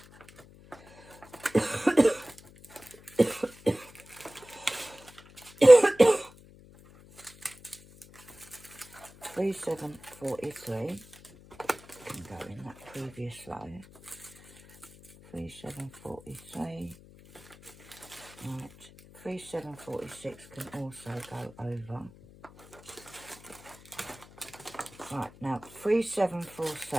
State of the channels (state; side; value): noise; left; hum, 22 dB below the sound